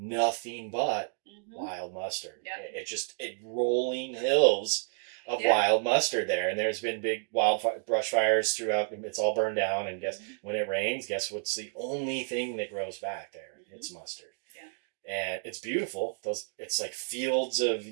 but wild mustard. Yep. It rolling hills of wild mustard there, and there's been big brush fires throughout. It's all burned down, and when it rains, guess what's the only thing that grows back there? It's mustard. Yeah. And it's beautiful. It's like fields of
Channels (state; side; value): silent; left; 57 dB below the other